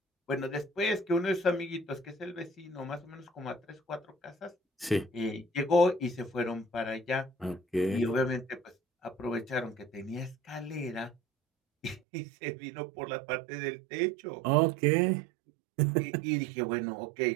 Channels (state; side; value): drops out; left; at 12.0 s